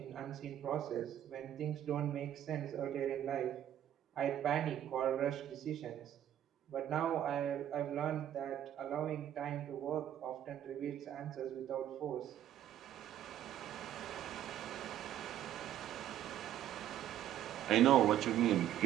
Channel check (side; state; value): left; quieter; 11.4 dB